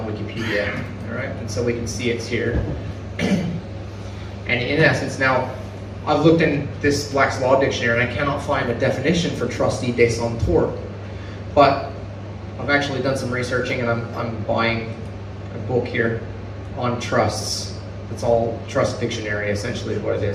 Wikipedia, alright, and so we can see it's here. And in essence, now I've looked in this Black's Law Dictionary and I cannot find a definition for trustee de son tort. But I've actually done some researching and I'm buying a book here on trusts. It's all trust dictionary essentially is what it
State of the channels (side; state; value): both; identical; correlation 1.00